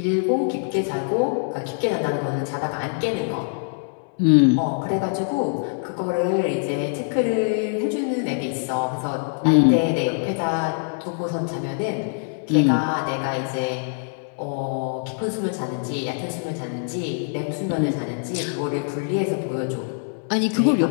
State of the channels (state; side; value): silent; right; 61 dB below the other